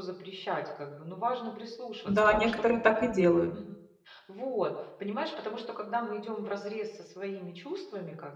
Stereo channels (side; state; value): both; identical; correlation 1.00